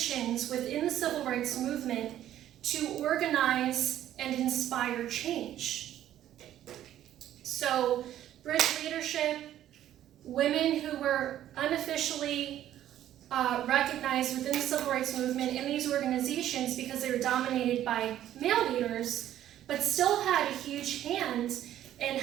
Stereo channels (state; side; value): quieter; left; 12.0 dB